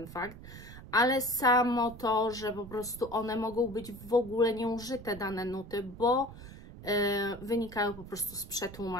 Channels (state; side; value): noise; right; rumble, 15 dB below the sound